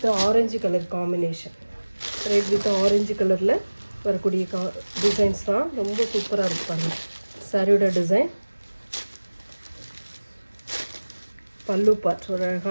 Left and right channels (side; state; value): both; inverted; correlation -1.00